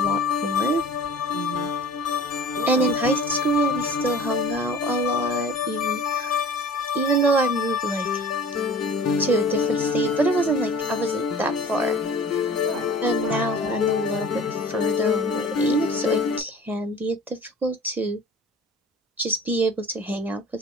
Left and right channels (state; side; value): normal; both; correlation 0.43